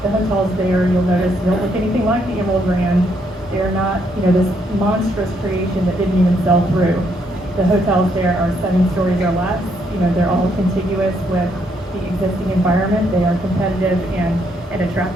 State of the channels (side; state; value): both; normal; correlation 0.73